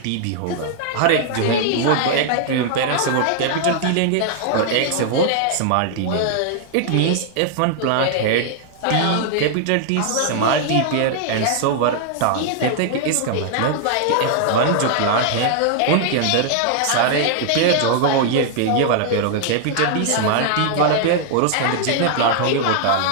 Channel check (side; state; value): both; different; correlation 0.00